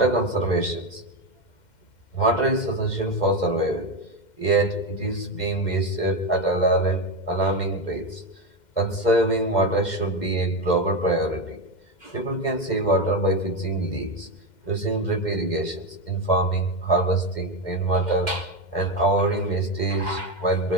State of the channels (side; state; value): right; late; 2.1 ms